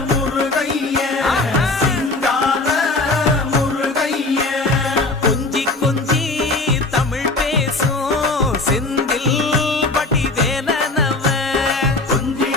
முருகைய சிங்கார முருகைய கொஞ்சி கொஞ்சி தமிழ் பேசும் செந்தில் வடிவேலனவ கொஞ்சி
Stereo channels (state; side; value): quieter; right; 3.1 dB